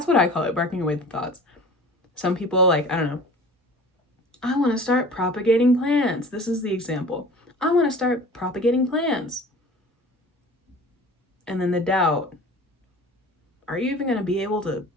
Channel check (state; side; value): normal; both; correlation 0.42